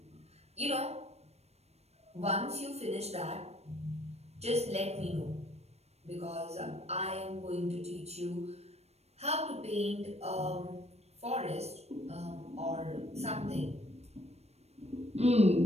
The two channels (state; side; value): late; left; 0.31 ms